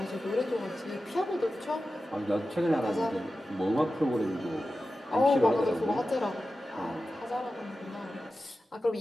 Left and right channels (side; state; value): both; normal; correlation 0.93